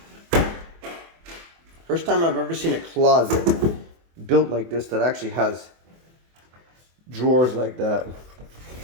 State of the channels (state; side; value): late; left; 24 ms